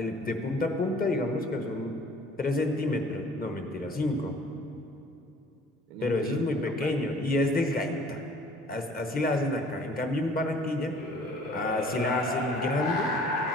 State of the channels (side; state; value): both; normal; correlation 0.53